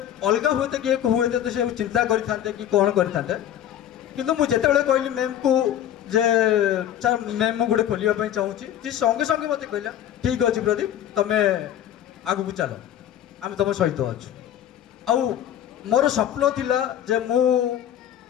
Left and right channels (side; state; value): right; quieter; 10.9 dB